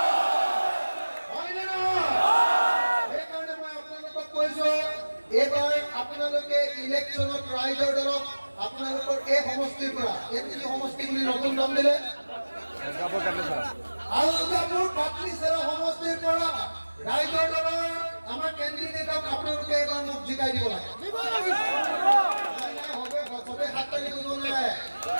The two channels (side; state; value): both; inverted; correlation -1.00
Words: সেইকাৰণে মই আপোনালোকক কৈছো, এইবাৰ আপোনালোকে ইলেকশ্যনত ৰাইজৰ দলক আপোনালোকৰ এই সমষ্টিৰ পৰা এই সমষ্টি বুলি নতুন নাম দিলে আলগাপুৰ পাটলিচেৰা সমষ্টিৰ পৰা ৰাইজৰ দলৰ আমাৰ কেণ্ডিডেটক আপোনালোকে এবাৰ মোক জিকাই দিব লাগে। হবে সবে হাত তালি দিব নাই,